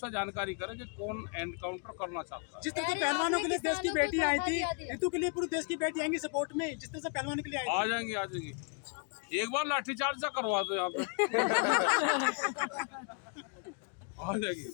जानकारी करे कि कौन एनकाउंटर करना चाहता है। जिस तरह से अरे पहलवानों के आपने लिए देश की किसानों को बेटी आई धोखा थी, दिया। ऋतु के लिए पूरे देश की बेटी आएंगी सपोर्ट में, जिस तरह से पहलवानों के लिए आई आ जाएंगे आ जाएंगे। एक बार लाठीचार्ज सा करवा दो यहाँ पे आ जाएंगे।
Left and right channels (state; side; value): quieter; right; 39.8 dB